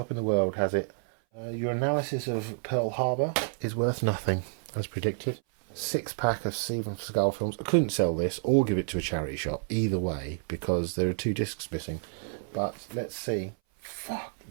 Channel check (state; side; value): silent; left; 58 dB below the other